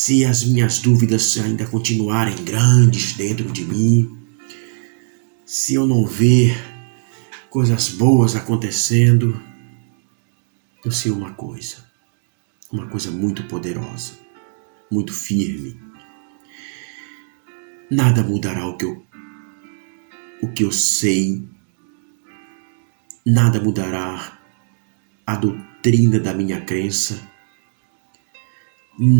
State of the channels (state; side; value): silent; left; digital silence